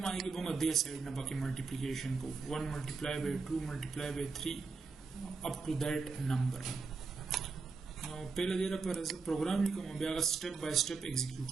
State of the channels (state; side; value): quieter; left; 4.5 dB